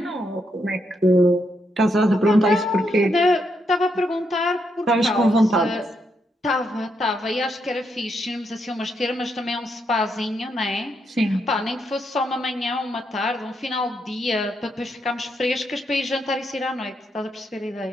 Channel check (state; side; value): normal; both; correlation 0.79